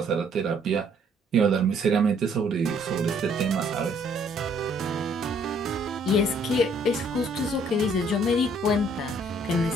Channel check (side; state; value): both; normal; correlation 0.63